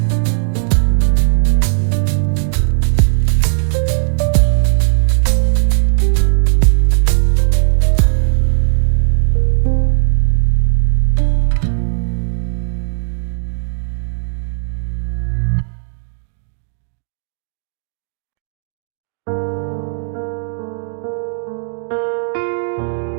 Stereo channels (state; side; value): silent; left; digital silence